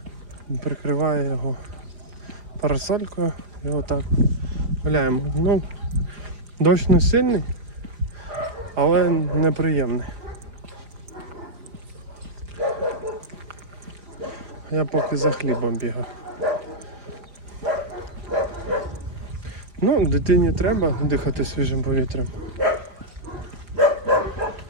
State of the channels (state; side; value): late; left; 4.9 ms